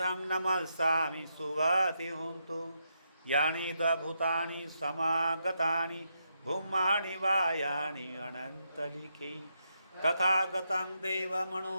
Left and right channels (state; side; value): inverted; both; correlation -0.81